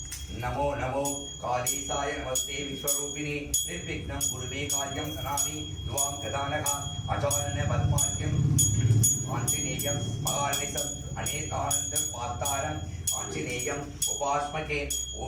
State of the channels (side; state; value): both; identical; correlation 1.00